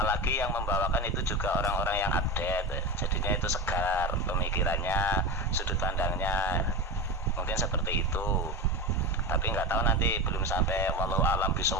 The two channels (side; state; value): both; normal; correlation 0.22